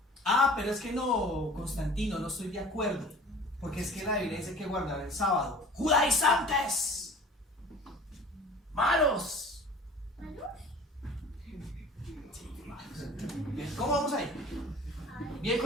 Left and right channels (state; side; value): normal; both; correlation 0.45